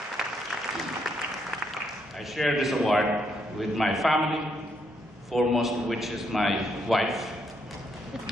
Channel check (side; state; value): both; normal; correlation 0.76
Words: I share this award with my family, foremost of which is my wife.